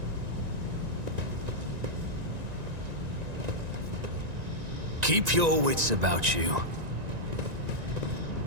Keep your wits about you.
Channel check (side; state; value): left; late; 1.9 ms